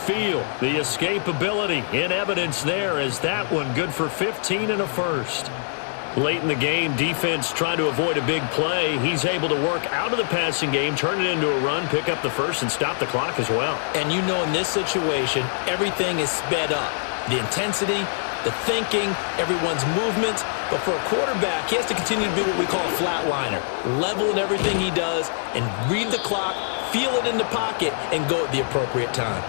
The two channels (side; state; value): right; silent; 63 dB below the other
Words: The escapability in evidence there as that one good for 15 and a first. Late in the game, defense trying to avoid a big play. He's able to work out of the passing game, turn it into a run, pick up the first, and stop the clock as well. And you know in this situation, everything is sped up. The intensity, the thinking, everyone's movement. But for a quarterback, he has to continue to be what we call a flatliner. Level in everything he does and read the clock, feel it in the pocket, and go at the appropriate time.